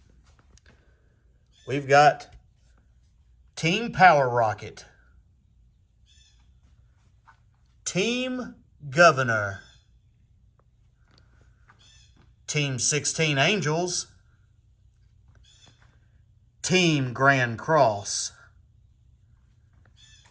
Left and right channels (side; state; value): both; identical; correlation 1.00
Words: We've got Team Power Rocket, Team Governor, Team 16 Angels, Team Grand Cross,